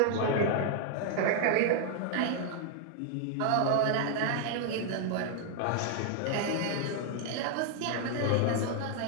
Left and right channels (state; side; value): different; both; correlation 0.00